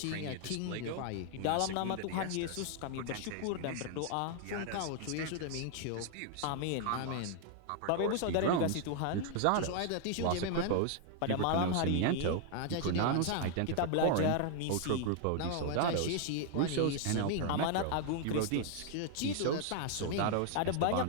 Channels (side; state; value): both; different; correlation 0.00